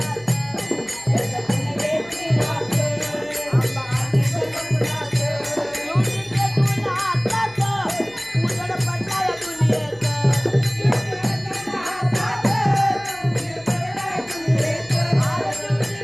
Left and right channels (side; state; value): right; noise; hum, 28 dB below the sound